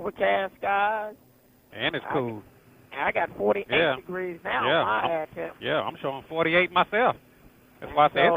skies. And it's cool. I got 48 degrees now. Yeah, I'm showing 48 myself. That's why I say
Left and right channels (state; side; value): identical; both; correlation 1.00